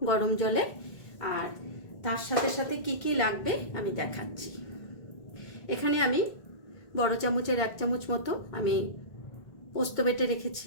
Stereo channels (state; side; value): late; right; 1.8 ms